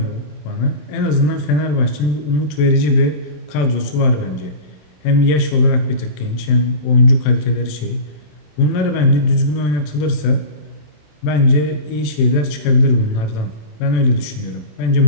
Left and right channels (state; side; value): late; right; 27 ms